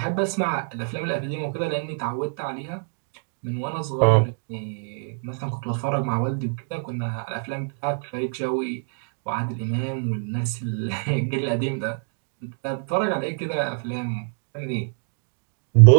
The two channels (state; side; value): silent; left; 62 dB below the other